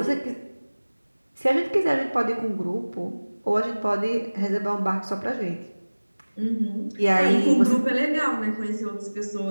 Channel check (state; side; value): inverted; both; correlation -1.00